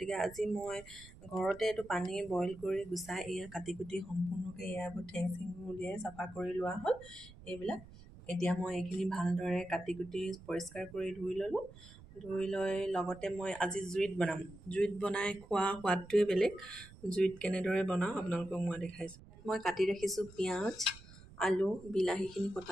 আজি মই ঘৰতে এইটো পানী বইল কৰি গুচাই এয়া কাটি কুটি সম্পূৰ্ণকৈ ইয়াৰ ঠেং চেংবোৰ উলিয়াই চাফা কৰি লোৱা হ'ল। এইবিলাক এতিয়া মই এইখিনি ভালদৰে কাটি কুটি পৰিষ্কাৰ কৰি ধুই ল'লোঁ। ধুই লৈ লগতে মই আজি জুইত বনাম। জুইত বনাই খোৱা সোৱাদটোৱে বেলেগ। জুইত কেনেদৰে বনাওঁ আপোনালোকক মই দেখাইছোঁ। মই কাটি ৰাখিছোঁ পিঁয়াজ, আলু, বিলাহীখিনি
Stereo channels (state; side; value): noise; right; rumble, 19 dB below the sound